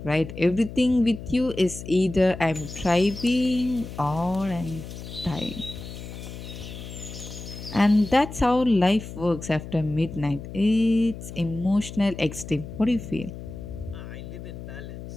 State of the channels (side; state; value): left; noise; hum, 11 dB below the sound